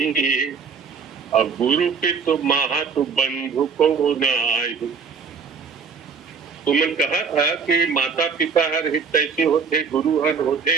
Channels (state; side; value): quieter; left; 5.5 dB